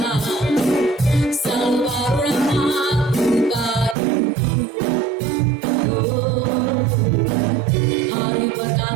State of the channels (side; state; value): left; drops out; at 4.0 s